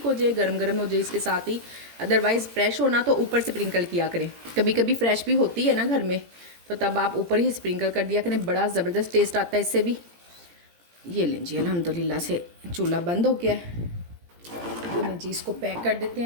हो जाए, गरम गरम हो जाए इसके साथ ही। अदरवाइज़ फ्रेश होना तो ऊपर से स्प्रिंकल किया करें, कभी कभी फ्रेश भी होती है ना घर में, तो तब आप ऊपर ही स्प्रिंकल कर दिया करें, बड़ा ज़बरदस्त टेस्ट आता है इससे भी। ये लें जी, अल्हम्दुलिल्लाह से चूल्हा बंद हो गया है। ये लें जी, इसको पैक कर देते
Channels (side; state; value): left; late; 17 ms